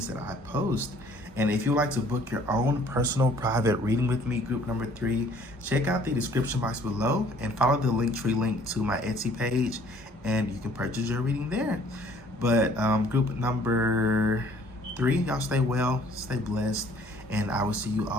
that I post. And if you'd like to book your own personal private reading with me, group number 3, check out the description box below and follow the Linktree link to my Etsy page, and you can purchase your reading there. But group number 3, y'all stay well, stay blessed, and I will see you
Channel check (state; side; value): normal; both; correlation 0.57